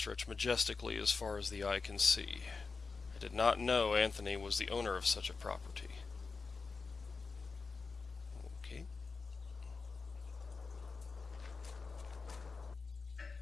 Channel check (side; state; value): right; quieter; 4.5 dB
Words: majestically as far as the eye can see. I did not know Anthony was the owner of such a property. Okay.